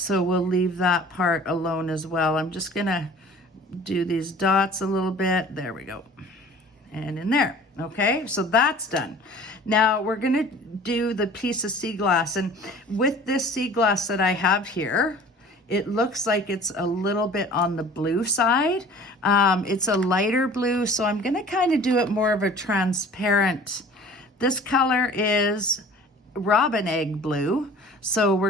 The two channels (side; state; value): both; normal; correlation 0.46